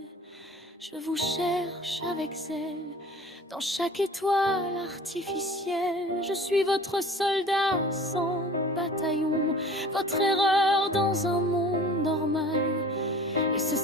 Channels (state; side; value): normal; both; correlation 0.44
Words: Je vous cherche avec zèle dans chaque étoile artificielle. Je suis votre soldat sans bataillon, votre erreur dans un monde normal. Et ce